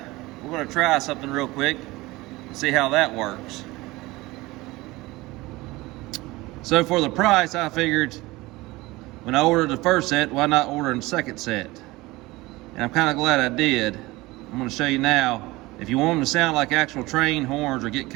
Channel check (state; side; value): quieter; left; 20.5 dB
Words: going to try something real quick and see how that works. So for the price, I figured when I ordered the first set, why not order the second set? And I'm kind of glad I did. I'm going to show you now. If you want them to sound like actual train horns or get